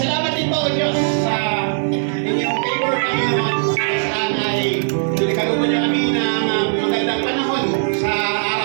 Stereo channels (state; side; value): silent; left; 58 dB below the other